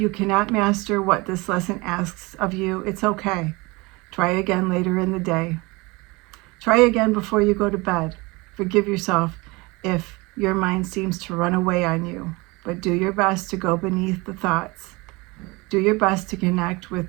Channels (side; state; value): left; quieter; 24.8 dB